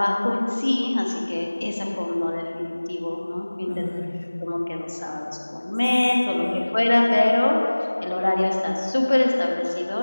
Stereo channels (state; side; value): inverted; both; correlation -1.00